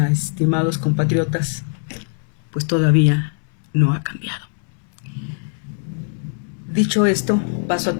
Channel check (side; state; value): right; silent; 59 dB below the other